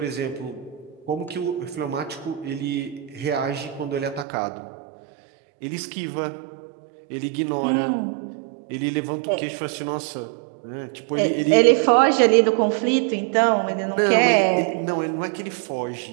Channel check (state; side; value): drops out; left; at 4.2 s